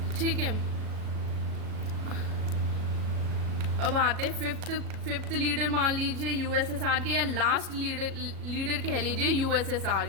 ठीक है, अब आते हैं फिफ्थ लीडर मान लीजिए यूएसएसआर के, या लास्ट लीडर कह लीजिए यूएसएसआर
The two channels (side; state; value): left; late; 37 ms